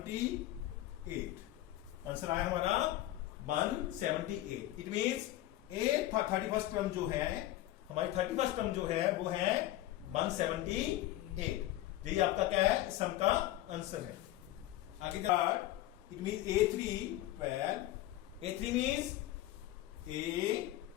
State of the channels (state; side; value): quieter; right; 15.1 dB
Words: आंसर आया हमारा 178। It means A 31st term जो है हमारी 31st टर्म जो है वो है 178। यही आपका क्या है सम का आंसर है। आगे it mean A3 12, A3 means A